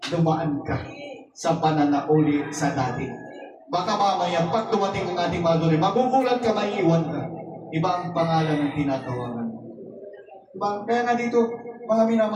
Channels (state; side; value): identical; both; correlation 1.00